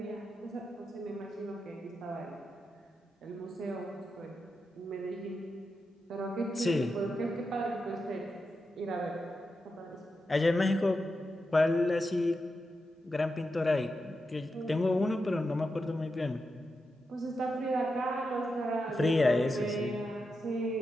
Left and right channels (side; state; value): both; normal; correlation 0.88